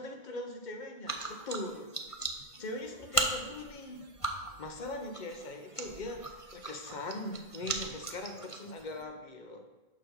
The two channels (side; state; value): right; late; 1.5 ms